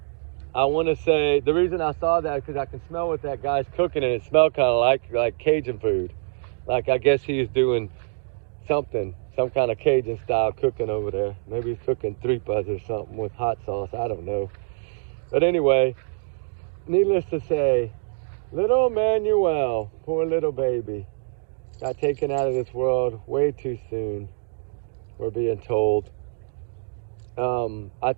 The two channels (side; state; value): left; silent; digital silence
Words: I want to say the reason I saw that is because I can smell what that guy's cooking, and it smelled kind of like Cajun food. Like I guess he's doing some kind of Cajun style cooking over there. Maybe he's cooking tripas or something with hot sauce. I don't know. But anyway, needless to say, little Emmanuel, poor little baby, got taken out of this world way too soon, we're being told. I